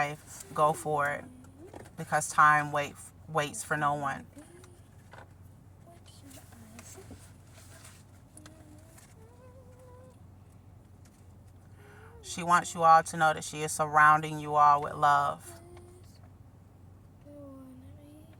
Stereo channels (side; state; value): both; identical; correlation 1.00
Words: go for it, because time waits for no one. She wants you all to know that she is surrounding you all with love.